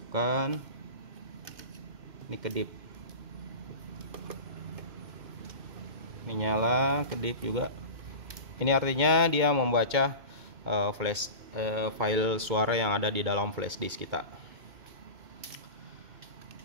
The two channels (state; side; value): late; left; 2.2 ms